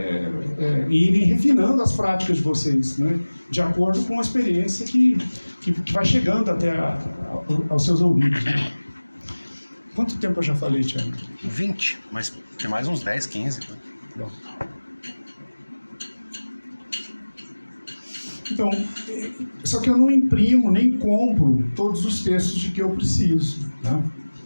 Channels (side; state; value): both; inverted; correlation -1.00